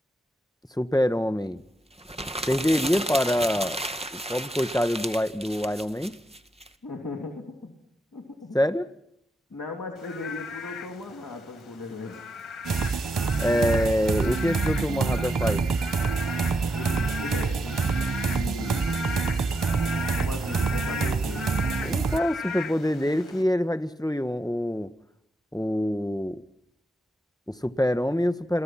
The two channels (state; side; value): normal; both; correlation 0.83